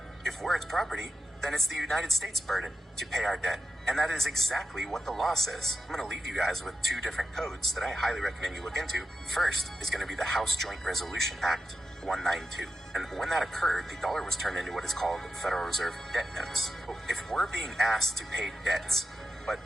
If we're its property, then it's the United States' burden to pay our debt. And that is exactly what the law says. I'm going to leave you guys with two different codes that I highly recommend you look into. First is going to be the House Joint Resolution Act 192. And when that occurred, the dollar was turned into what is called Federal Reserve debt notes. If we're being asked to pay debts, but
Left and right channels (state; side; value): normal; both; correlation 0.90